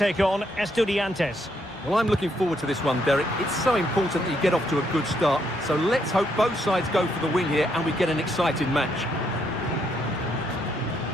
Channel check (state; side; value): normal; both; correlation 0.74